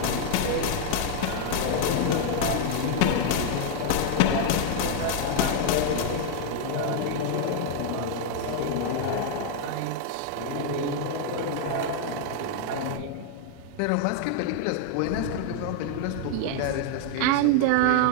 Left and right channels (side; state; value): both; different; correlation 0.00